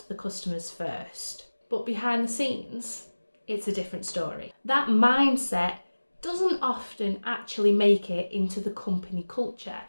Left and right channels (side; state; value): both; inverted; correlation -1.00